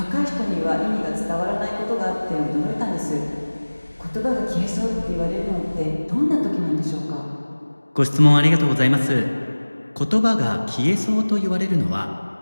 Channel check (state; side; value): inverted; both; correlation -1.00